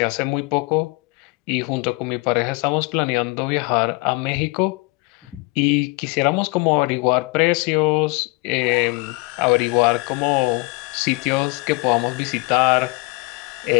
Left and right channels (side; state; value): right; quieter; 26.5 dB